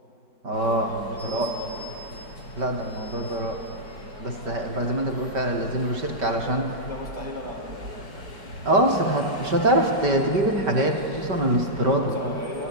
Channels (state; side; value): late; left; 5.2 ms